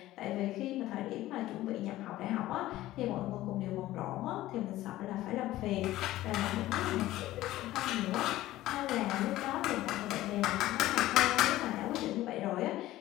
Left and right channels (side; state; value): right; quieter; 15.7 dB